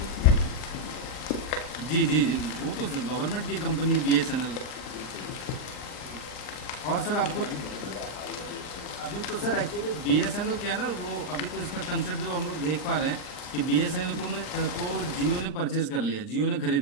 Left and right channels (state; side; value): late; right; 39 ms